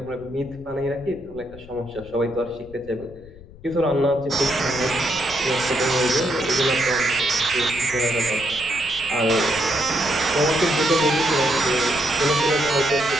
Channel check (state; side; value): noise; left; rumble, 20 dB below the sound